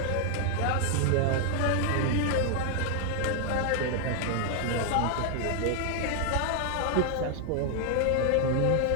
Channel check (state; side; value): different; both; correlation 0.00